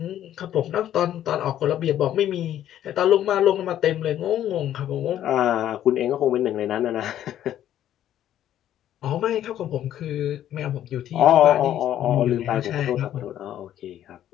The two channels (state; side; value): quieter; right; 11.5 dB